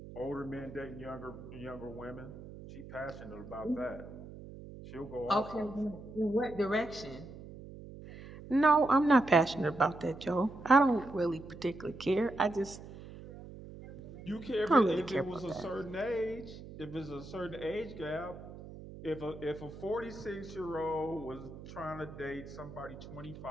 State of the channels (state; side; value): noise; right; hum, 14 dB below the sound